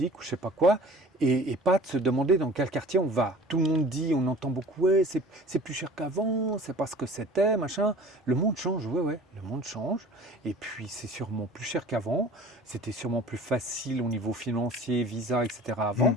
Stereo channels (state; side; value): normal; both; correlation 0.45